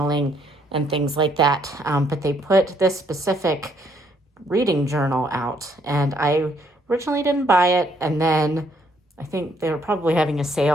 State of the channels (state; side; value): normal; both; correlation 0.69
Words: and things like that. But they put this specific reading journal out, and I originally didn't buy it, and then I think they were probably having a